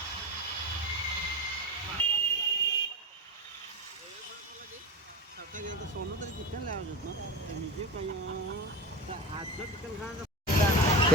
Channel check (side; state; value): both; normal; correlation 0.25